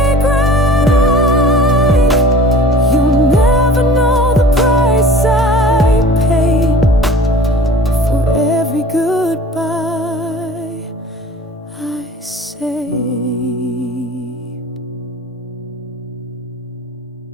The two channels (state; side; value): normal; both; correlation 0.44